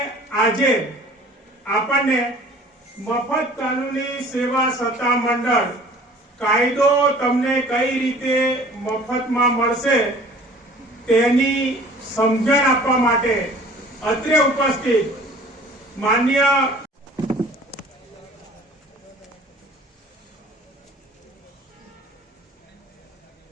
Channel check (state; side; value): normal; both; correlation 0.48